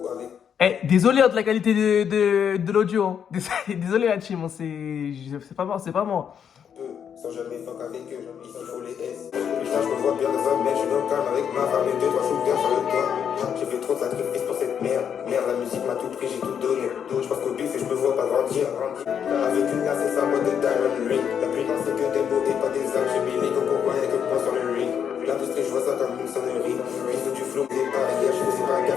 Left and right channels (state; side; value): quieter; right; 8.0 dB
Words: avec. Désolé hein, de la qualité de l'audio. Hein. Désolé la team, hein, c'est pas moi, c'est pas moi. Peu, sans jamais fuck avec eux, ici faut les S. Putain, je me vois bien de femme, mais je suis dans le calme avec ma femme et 2-3 shooters sur le toit. J'ai fait trop de sacrifices pour cette merde. Merde, la musique m'a tout pris, j'ai tout donné. Je pense qu'au bif et je me vois pas grandir. Avec une glace et sa boîte de diamond ring. La plupart c'est que des mots et pas des actes. J'ai mis les gants pour y'a que moi sur le ring. L'industrie, je vois ça comme une sonnerie. Ils du flow, des barrières, je fais pas gaffe